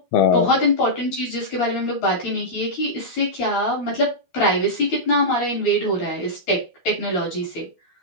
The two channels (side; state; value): right; late; 12 ms